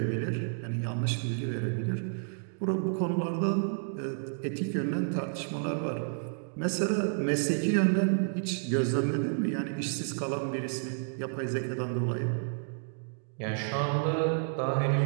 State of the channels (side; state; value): left; silent; digital silence